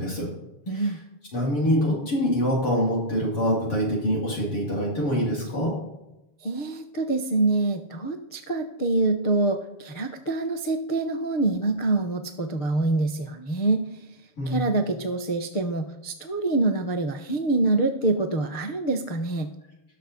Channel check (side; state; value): right; late; 6.7 ms